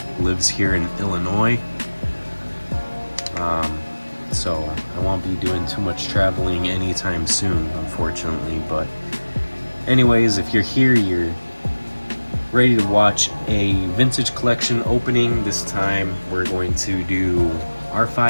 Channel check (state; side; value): inverted; both; correlation -1.00